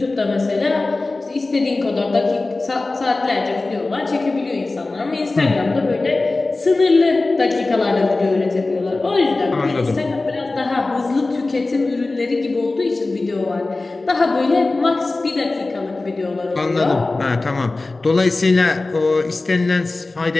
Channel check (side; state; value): right; quieter; 3.3 dB